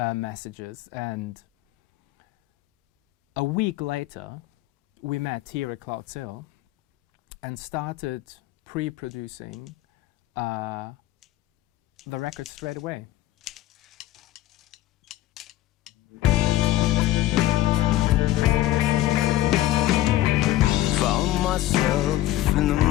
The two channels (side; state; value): right; quieter; 15.0 dB